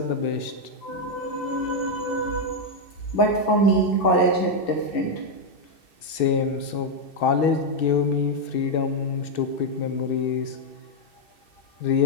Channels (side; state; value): right; late; 2.7 ms